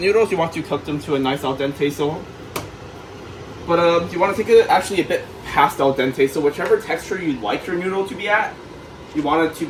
you want to cook them to a nice al dente. But you want to take it actually a bit past al dente. So whichever texture you like your noodle to be at, you want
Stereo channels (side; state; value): both; identical; correlation 1.00